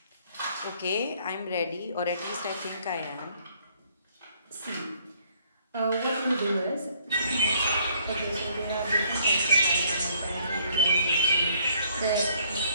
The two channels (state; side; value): inverted; both; correlation -0.63